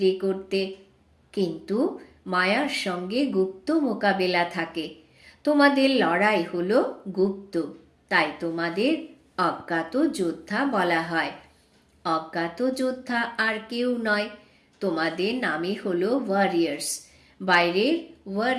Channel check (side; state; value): both; identical; correlation 1.00